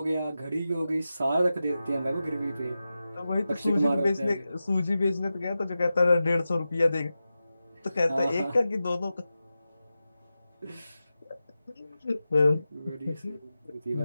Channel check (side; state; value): both; inverted; correlation -0.93